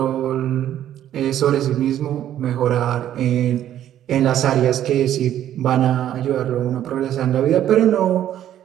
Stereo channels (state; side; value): quieter; left; 11.4 dB